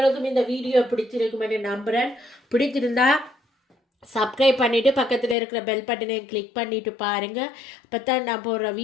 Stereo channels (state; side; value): drops out; right; at 5.4 s